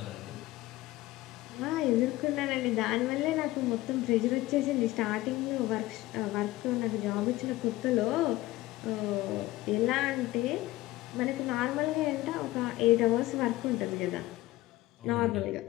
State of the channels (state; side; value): quieter; right; 17.5 dB